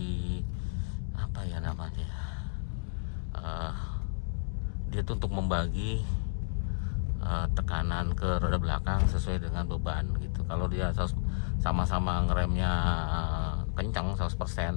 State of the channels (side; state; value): right; silent; digital silence